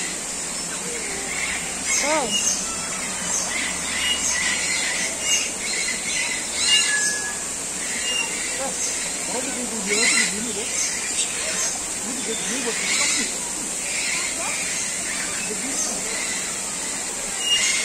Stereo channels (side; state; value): both; identical; correlation 1.00